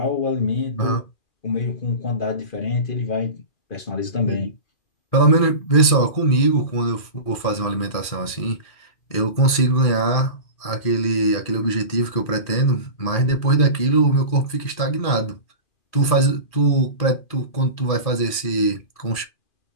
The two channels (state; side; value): late; right; 2.4 ms